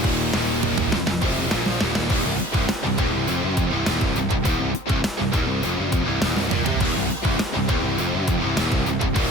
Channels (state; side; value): normal; both; correlation 0.52